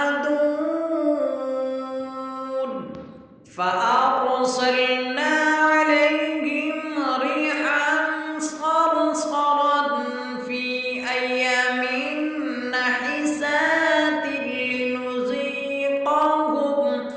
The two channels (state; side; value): identical; both; correlation 1.00